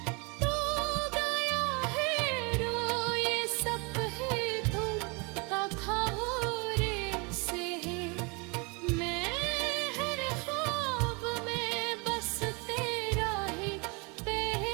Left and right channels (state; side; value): quieter; left; 30.5 dB